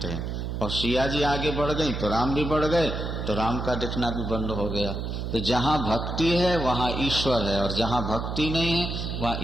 हैं, और सिया जी आगे बढ़ गई तो राम भी बढ़ गए, तो राम का दिखना भी बंद हो गया। तो जहाँ भक्ति है वहाँ ईश्वर है, और जहाँ भक्ति नहीं है वहाँ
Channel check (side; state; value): right; noise; hum, 4 dB below the sound